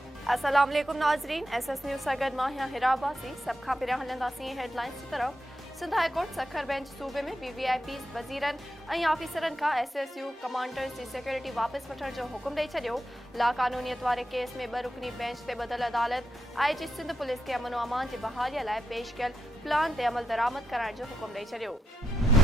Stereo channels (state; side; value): normal; both; correlation 0.86